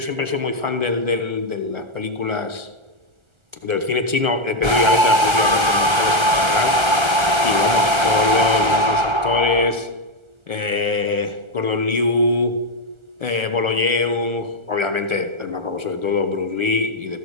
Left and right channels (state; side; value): late; left; 1.4 ms